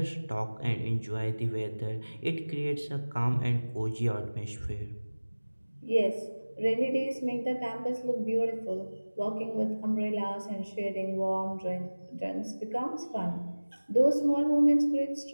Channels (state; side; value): inverted; both; correlation -1.00